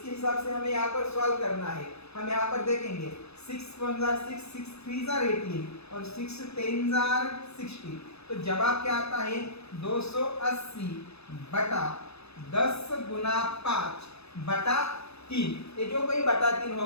हिसाब से हमें यहाँ पर सॉल्व करना है। हम यहाँ पर देखेंगे 6 1 6 6 3 18 और 6 10 60। तो जवाब क्या आता है? 280 बटा 10 गुना 5/3। ये जो कोई बटा 3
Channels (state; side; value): late; right; 0.79 ms